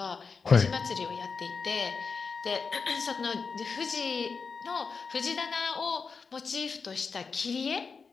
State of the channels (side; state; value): right; quieter; 5.1 dB